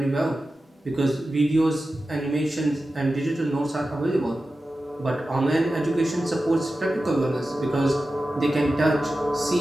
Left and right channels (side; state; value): both; normal; correlation 0.93